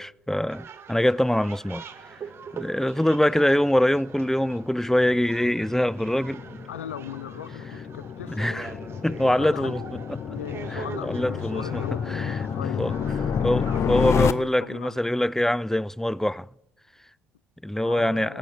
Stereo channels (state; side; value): normal; both; correlation 0.93